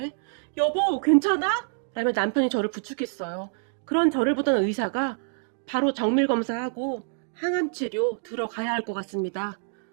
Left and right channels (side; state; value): left; silent; digital silence